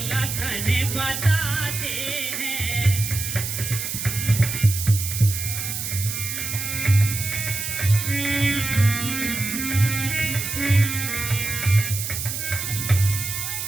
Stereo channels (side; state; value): right; noise; hiss, 4 dB below the sound